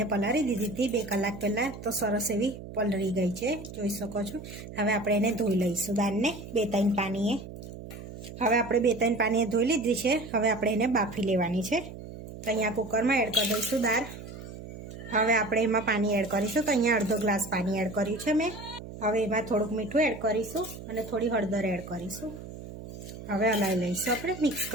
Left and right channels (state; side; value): noise; right; hum, 12 dB below the sound